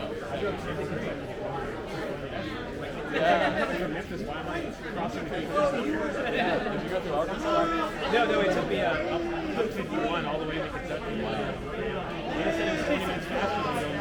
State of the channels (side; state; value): both; identical; correlation 1.00